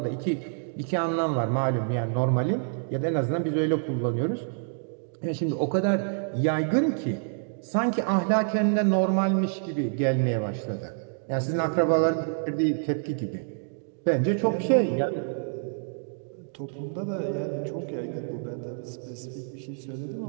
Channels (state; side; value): silent; left; digital silence